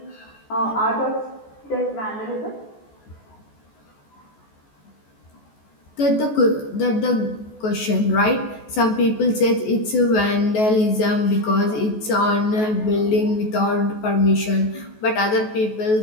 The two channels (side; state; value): right; late; 14 ms